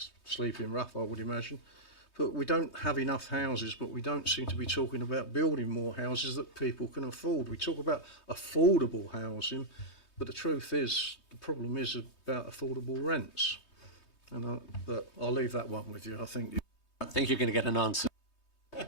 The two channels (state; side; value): late; right; 3.2 ms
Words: sleeping rough, I would imagine. But we don't have enough houses, but we don't seem to be talking about building more houses that people can afford. We talk about affordable housing, but the truth is, the problem is about affordable rents. But I'll leave that one with you. I think you're going to get an answer.